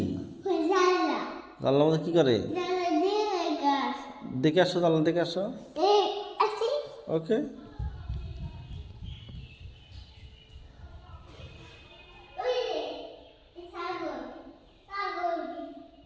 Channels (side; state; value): both; identical; correlation 1.00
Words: জানলা জানলার মধ্যে কি করে? জানলা দিয়ে গাছ দেখে আসো, জানলা দেখে আসো। এই আসি ওকে। ওই রে ছাগল ছাগল